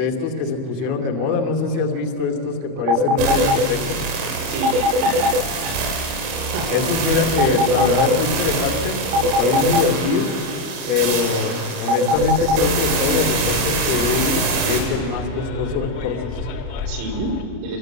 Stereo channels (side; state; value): left; late; 30 ms